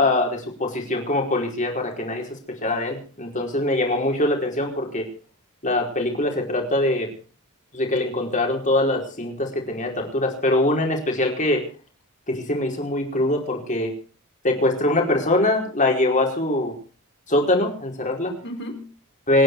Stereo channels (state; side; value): normal; both; correlation 0.24